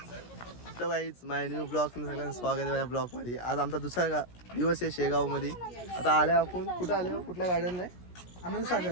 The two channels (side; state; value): right; late; 17 ms